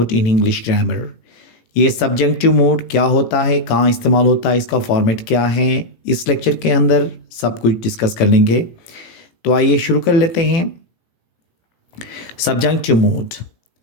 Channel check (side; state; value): right; late; 18 ms